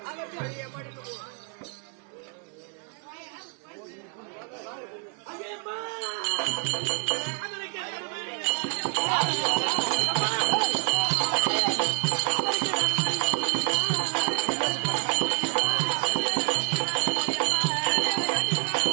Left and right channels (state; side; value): quieter; left; 39.7 dB